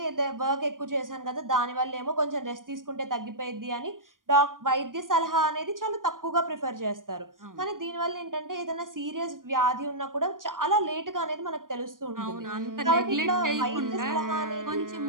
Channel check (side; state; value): left; late; 0.90 ms